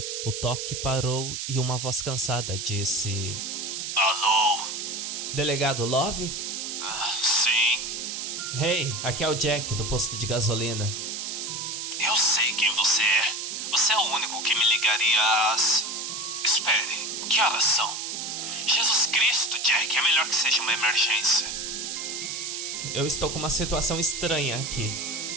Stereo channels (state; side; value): noise; right; hiss, 5 dB below the sound